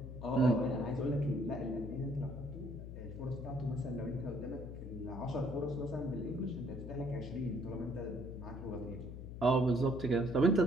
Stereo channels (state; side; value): noise; left; hum, 9 dB below the sound